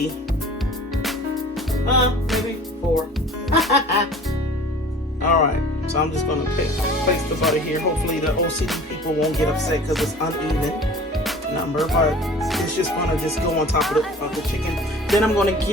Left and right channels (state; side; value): normal; both; correlation 0.44